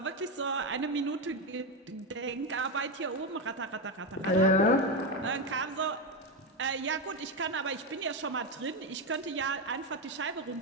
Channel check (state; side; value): normal; both; correlation 0.12